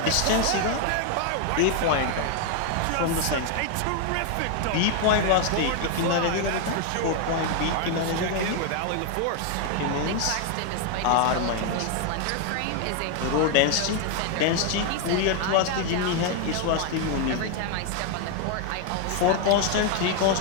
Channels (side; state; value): both; different; correlation 0.00